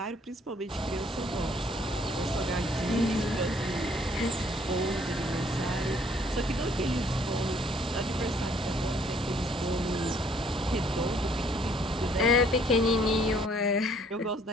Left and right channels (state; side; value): normal; both; correlation 0.63